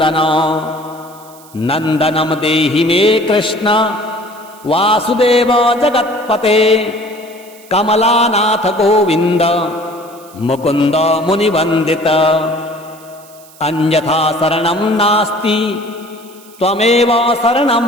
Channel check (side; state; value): right; noise; hiss, 24 dB below the sound